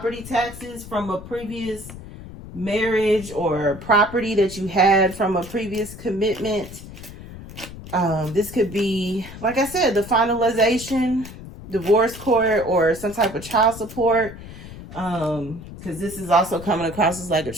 taxes from a previous marriage, or property that you had from a previous commitment. This could be, like I said, the finalization, divorce court, or some type of child support. Because this is also coming across as like a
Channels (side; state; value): left; noise; rumble, 14 dB below the sound